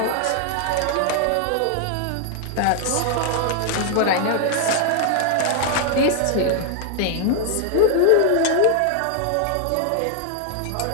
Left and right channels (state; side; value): different; both; correlation 0.00